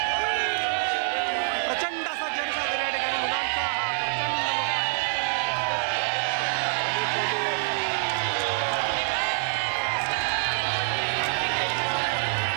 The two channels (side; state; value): left; silent; 61 dB below the other